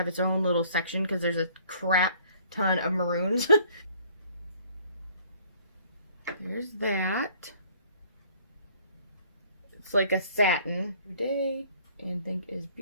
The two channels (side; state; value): both; inverted; correlation -0.57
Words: its own little section because there's a crap ton of maroons. There's that. It's like a satin day and think is